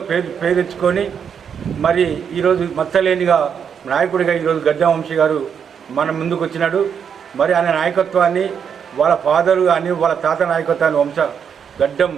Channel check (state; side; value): quieter; left; 7.4 dB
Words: పేరు తెచ్చుకొని మరి ఈరోజు మచ్చలేనిగా నాయకుడిగా ఈరోజు గడ్డం వంశీ గారు మన ముందుకు వచ్చినాడు. మరి ఆయన నాయకత్వాన్ని, వాళ్ళ ఫాదరు కానీ వాళ్ళ తాత నాయకత్వాన్ని గడ్డం